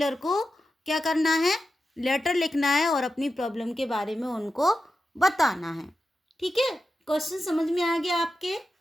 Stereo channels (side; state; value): both; normal; correlation 0.91